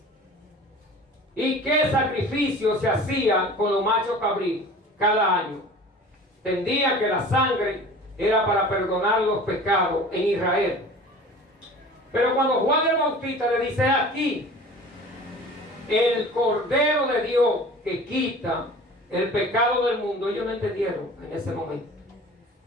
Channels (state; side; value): normal; both; correlation 0.42